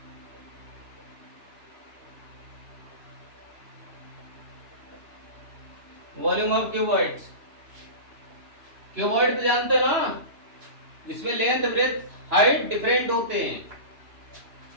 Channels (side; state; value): left; late; 2.9 ms